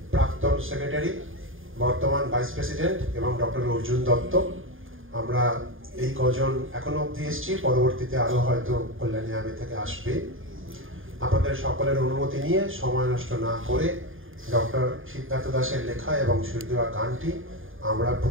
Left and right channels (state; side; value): late; left; 0.59 ms